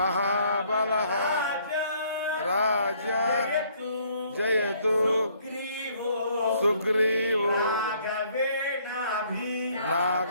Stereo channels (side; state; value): both; inverted; correlation -0.64